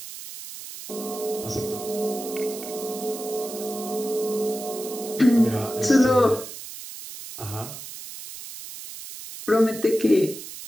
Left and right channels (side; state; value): right; noise; hiss, 12 dB below the sound